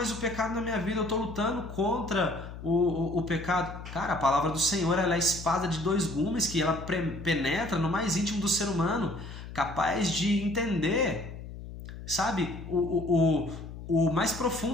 o pecado na minha vida, eu estou lutando contra o pecado. Cara, a palavra do Senhor, ela é a espada de dois gumes, que ela penetra no mais íntimo do ser humano, capaz de entender, sabe, o mais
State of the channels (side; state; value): left; noise; hum, 12 dB below the sound